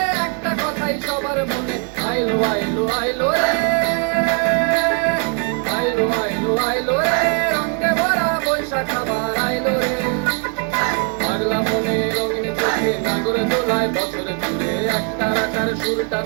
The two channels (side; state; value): left; quieter; 37.5 dB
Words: একটা কথাই সবার মনে আইলো আইলো আইলো রে আইলো আইলো আইলো রে রঙে ভরা বৈশাখ আবার আইলো রে পাগলা মনে রঙিন চোখে নাগরে তোলায় বছরে ঘুরে একটা রাখার সুরটা